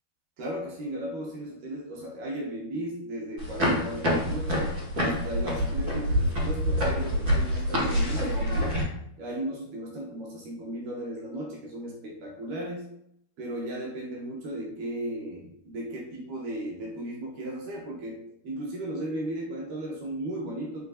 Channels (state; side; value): late; left; 12 ms